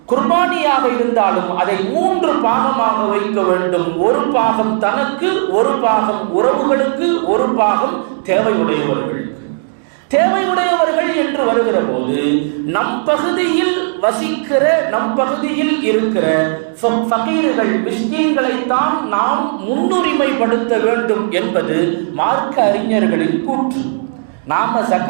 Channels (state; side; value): silent; left; digital silence